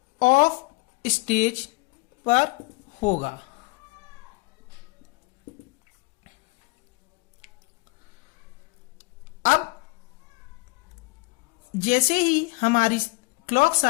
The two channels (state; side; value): quieter; right; 26.7 dB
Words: of stage पर होगा। अब जैसे ही हमारी क्लॉक